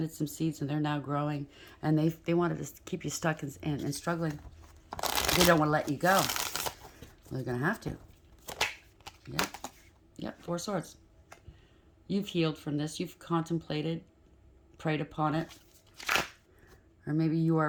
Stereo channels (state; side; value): identical; both; correlation 1.00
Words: some seeds, and they're now growing. And they wanted to keep you stuck and struggling. They don't want to let you go. Well, they're going to have to. Yep. Yep, 4 swords. You've healed from this. You've contemplated, prayed upon it. Or maybe you are